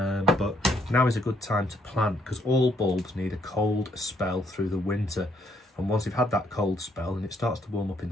now is a good time to plant because all bulbs need a cold spell through the winter, and once they've had that cold spell and it starts to warm up in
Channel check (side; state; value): both; normal; correlation 0.70